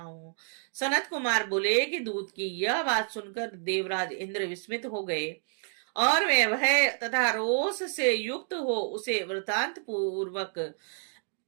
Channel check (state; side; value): silent; left; 58 dB below the other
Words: हूँ। सनत कुमार बोले कि दूत की यह बात सुनकर देवराज इंद्र विस्मित हो गए और वे भय तथा रोष से युक्त हो उसे वृतांत पूर्वक